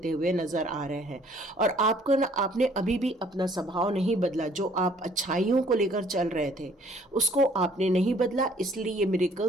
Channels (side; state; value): both; normal; correlation 0.59